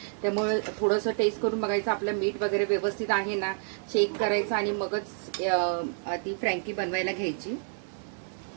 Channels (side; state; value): left; silent; digital silence